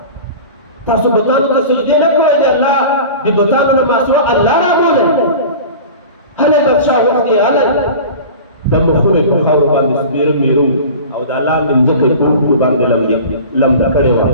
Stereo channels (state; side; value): inverted; both; correlation -0.36